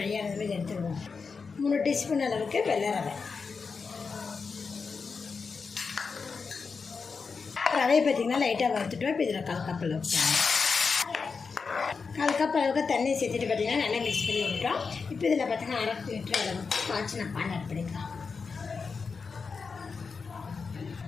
ஆனது மாதிரி எடுத்துருவோம். 3 டீஸ்பூன் அளவுக்கு வெள்ளை ரவை. ரவையை பார்த்திங்கன்னா லைட்டாக வறுத்துட்டோம். இப்போ இதில் 1/4 கப் அளவுக்கு 1/4 கப் அளவுக்கு தண்ணி சேர்த்துட்டு பார்த்திங்கன்னா நல்லா மிக்ஸ் பண்ணி விட்டுட்டோம். இப்போ இதில் பார்த்திங்கன்னா 1/2 லிட்டர் அளவுக்கு காய்ச்சின பால் ஆட் பண்ணிக்கலாம்.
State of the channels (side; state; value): right; quieter; 5.1 dB